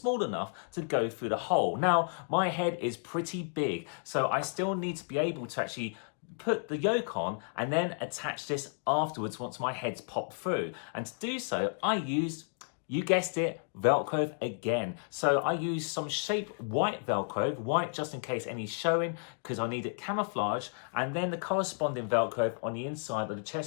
enough to go through the hole. Now my head is pretty big, so I still need to be able to actually put the Yolk on and then attach this afterwards once my head's popped through. And to do so, I used, you guessed it, Velcro again. So I used some shaped white Velcro, white just in case any's showing, because I need it camouflage, and then the corresponding Velcro on the inside of the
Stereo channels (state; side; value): silent; right; 56 dB below the other